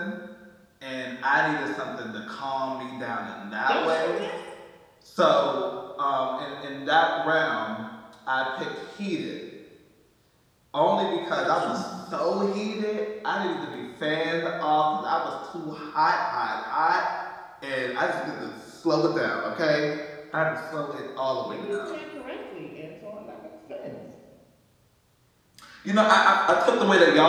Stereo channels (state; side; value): identical; both; correlation 1.00